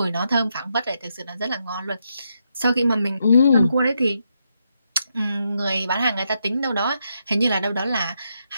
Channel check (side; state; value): both; inverted; correlation -0.81